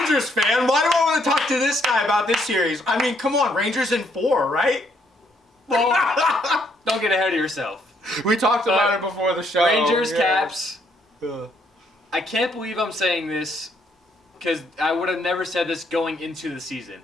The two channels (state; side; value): normal; both; correlation 0.70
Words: fan, why do I want to talk to this guy about this series? I mean, come on, Rangers in 4, right? Well, don't get ahead of yourself. We talked about it before the show. Rangers, Caps. I can't believe I'm saying this because I would have never said this going into the season.